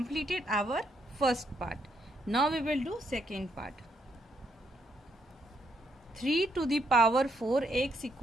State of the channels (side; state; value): both; normal; correlation 0.75